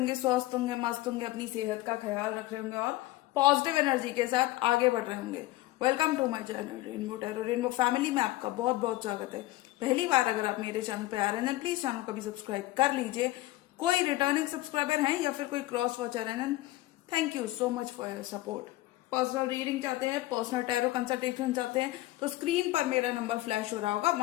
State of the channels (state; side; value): quieter; right; 17.6 dB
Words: स्वस्थ होंगे, मस्त होंगे, अपनी सेहत का ख्याल रख रहे होंगे और पॉजिटिव एनर्जी के साथ आगे बढ़ रहे होंगे। Welcome to my channel rainbow tarot. Rainbow family में आपका बहुत बहुत स्वागत है। पहली बार अगर आप मेरे चैनल पे आ रहे हैं प्लीज चैनल को भी सब्सक्राइब कर लीजिए। कोई रिटर्निंग सब्सक्राइबर हैं या फिर कोई क्रॉस वॉचर है, thank you so much for your support. Personal reading चाहते हैं, पर्सनल टैरो कंसल्टेशन चाहते हैं तो स्क्रीन पर मेरा नंबर फ्लैश हो रहा होगा,